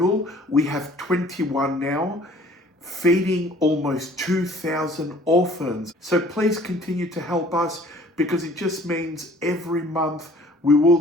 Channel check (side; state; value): both; normal; correlation 0.53